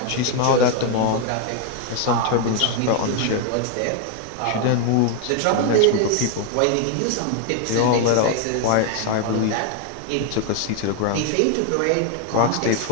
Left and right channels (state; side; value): different; both; correlation 0.01